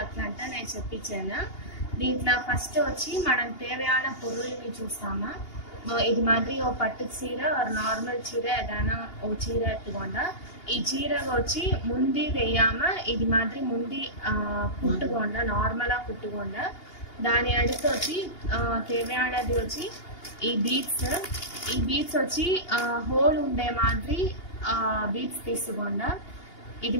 అట్లంటే నేను చెప్పించాను. దీంట్లో ఫస్ట్ వచ్చి మనం తేవయాన పొరుల్ని చూస్తామా. ఇది మాదిరి ఓ పట్టు చీర నార్మల్ చీర ఏదైనా ఓ చీర ఎత్తుకోండా ఈ చీర వచ్చి ముందు వెయ్యామా ఇది మాదిరి ముందు కుట్టుకోండా నార్మల్గా కుట్టుకోండా. దాని అడుగు వచ్చి తేవయానది వచ్చి ఈ బీడ్స్ వచ్చి హోల్ ఉండే మాదిరి బీడ్స్ తీసుకోండా. ఇది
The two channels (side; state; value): right; late; 2.8 ms